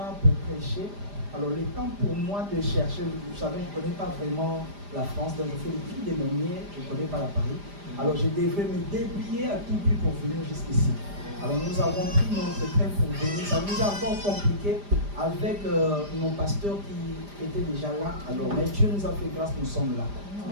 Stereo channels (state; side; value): late; left; 5.0 ms